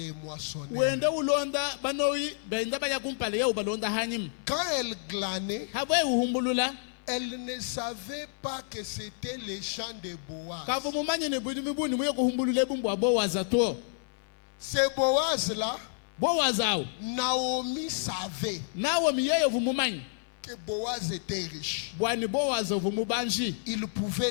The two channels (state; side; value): silent; right; 58 dB below the other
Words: moissonneurs. Quand elle glanait, elle ne savait pas que c'était les champs de Boaz. C'est Boaz-là, Naomi savait que Boaz était riche. Il pouvait